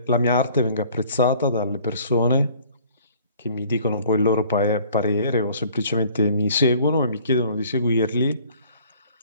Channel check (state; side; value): inverted; both; correlation -0.54